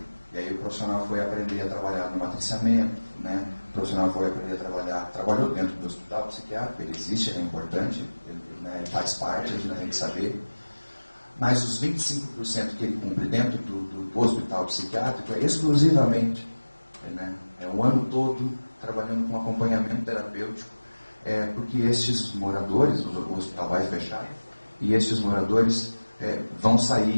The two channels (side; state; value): both; inverted; correlation -1.00